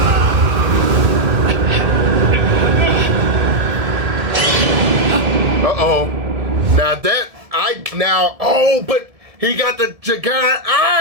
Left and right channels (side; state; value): left; late; 1.7 ms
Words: Uh-oh. But he got the giant